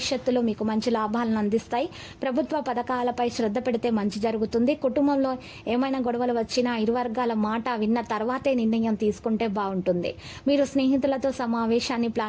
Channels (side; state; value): both; identical; correlation 1.00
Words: మీకు మంచి లాభాలను అందిస్తాయి. ప్రభుత్వ పథకాలపై శ్రద్ధ పెడితే మంచి జరుగుతుంది. కుటుంబంలో ఏమైనా గొడవలు వచ్చినా ఇరు వర్గాల మాట విన్న తర్వాతే నిర్ణయం తీసుకుంటే బాగుంటుంది. మీరు స్నేహితులతో సమావేశాన్ని